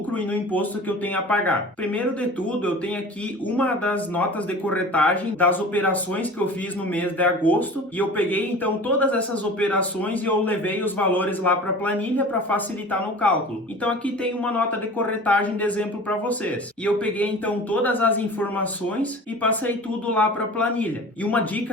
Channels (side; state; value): both; normal; correlation 0.39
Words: e no imposto que eu tenho a pagar. Primeiro de tudo, eu tenho aqui uma das notas de corretagem das operações que eu fiz no mês de agosto e eu peguei então todas essas operações e eu levei os valores lá para a planilha para facilitar no cálculo. Então aqui tem uma nota de corretagem de exemplo para vocês. E eu peguei então todas as informações e passei tudo lá para a planilha. E uma